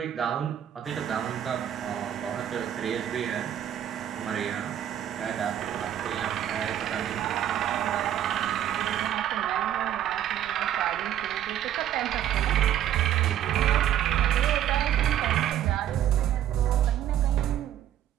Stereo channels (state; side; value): quieter; left; 10.9 dB